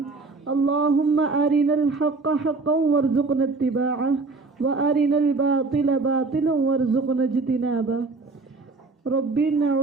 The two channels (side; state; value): left; quieter; 3.8 dB